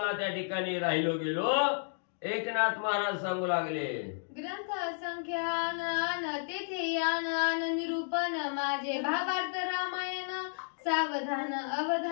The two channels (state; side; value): silent; right; digital silence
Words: त्या ठिकाणी राहिलो गेलो. एकनाथ महाराज सांगू लागले, ग्रंथ संख्यान तेथे यान निरूपण माझे भावार्थ रामायण सावधान